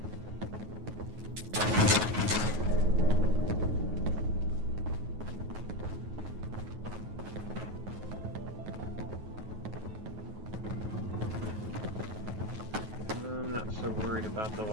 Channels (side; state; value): left; late; 9.4 ms